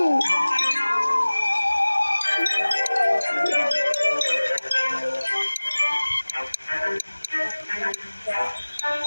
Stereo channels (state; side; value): inverted; both; correlation -1.00